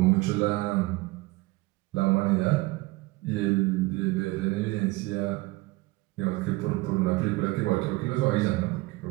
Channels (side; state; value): left; quieter; 21.5 dB